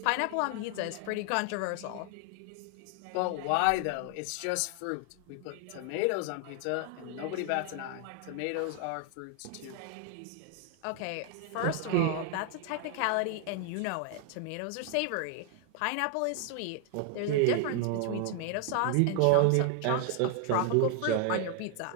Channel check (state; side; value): different; both; correlation 0.00